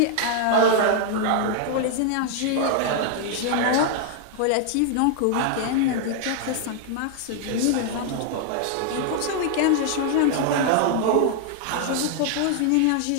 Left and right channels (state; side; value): different; both; correlation 0.00